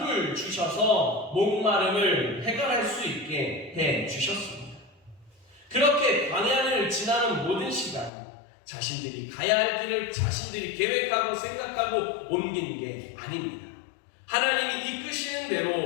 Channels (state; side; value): drops out; right; at 8.1 s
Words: 주셔서 목마름을 해결할 수 있게 해 주셨습니다. 그렇게 광야를 지나는 모든 시간, 자신들이 가야 할 길을 자신들이 계획하고 생각하고 옮긴 게 아닙니다. 하나님이 이끄시는